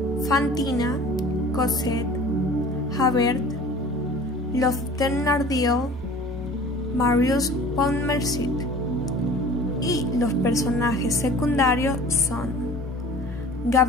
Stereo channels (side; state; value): both; normal; correlation 0.44